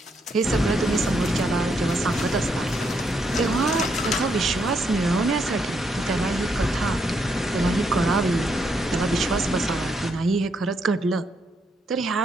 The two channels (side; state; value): both; normal; correlation 0.76